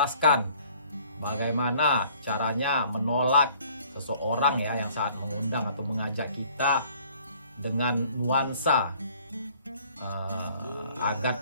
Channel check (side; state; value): both; inverted; correlation -0.57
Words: bagaimana caranya menolak seseorang ya yang saat mengundang atau mengajak kita dengan nuansa agar